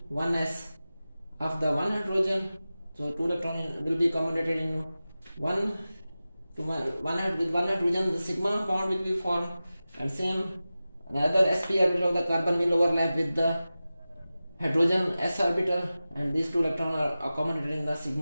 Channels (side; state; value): both; inverted; correlation -0.95